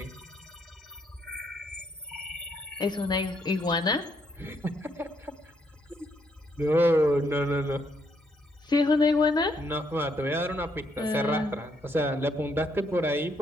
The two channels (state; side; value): normal; both; correlation 0.73